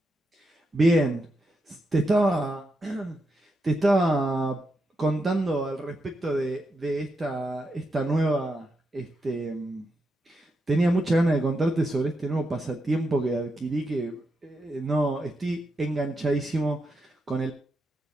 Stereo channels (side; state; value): both; normal; correlation 0.84